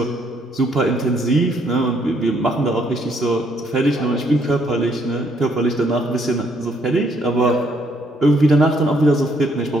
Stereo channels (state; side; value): normal; both; correlation 0.69